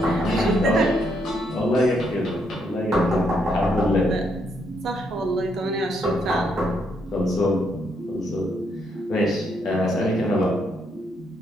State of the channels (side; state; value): both; normal; correlation 0.75